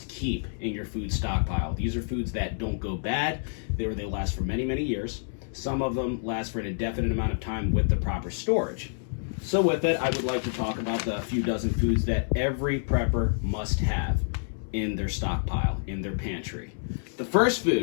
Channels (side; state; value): right; silent; 59 dB below the other